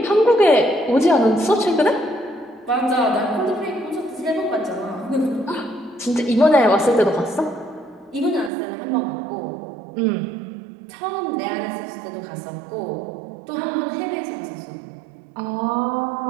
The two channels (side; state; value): left; drops out; at 8.5 s